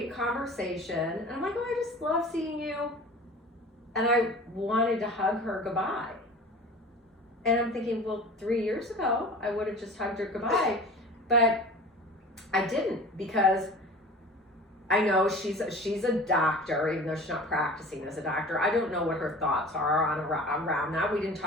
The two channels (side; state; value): both; normal; correlation 0.39